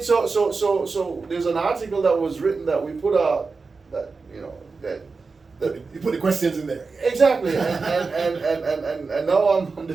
So there's an article that was written that we put out that you put the questions in there. Exactly, and now I'm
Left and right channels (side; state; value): left; quieter; 4.4 dB